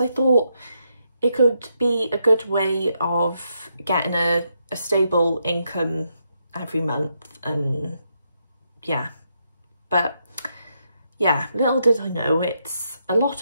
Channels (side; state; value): both; inverted; correlation -0.80